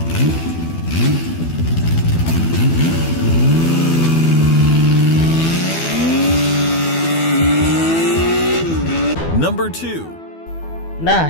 Number 2. Nah,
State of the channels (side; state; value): right; late; 12 ms